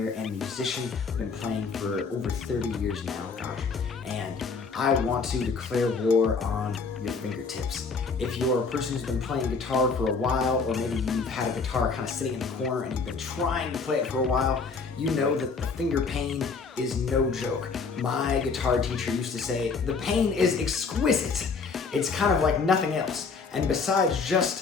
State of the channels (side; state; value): right; quieter; 4.8 dB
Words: and musician. I've been playing for over 30 years now, gosh, and I want to declare war on your fingertips. If you're a person who's been playing guitar for a while, or maybe you've had a guitar kind of sitting in the corner and you've been trying to play it for a while, you know that the finger pain is no joke. My guitar teacher used to say, the pain is exquisite. It's kind of like nothing else. And besides